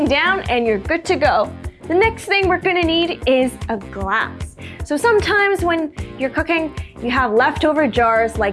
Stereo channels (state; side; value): identical; both; correlation 1.00